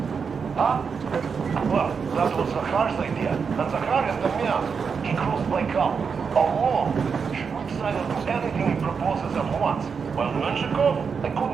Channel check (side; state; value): left; quieter; 5.9 dB